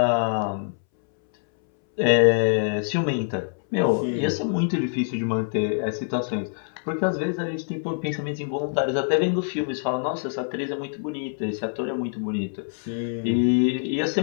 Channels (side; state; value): right; silent; 62 dB below the other